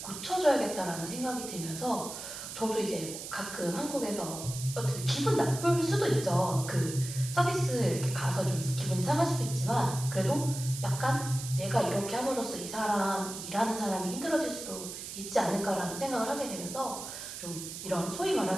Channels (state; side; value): noise; right; hiss, 9 dB below the sound